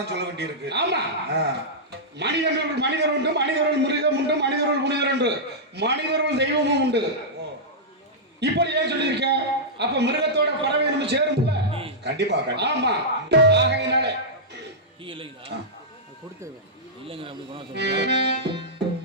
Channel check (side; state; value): both; normal; correlation -0.11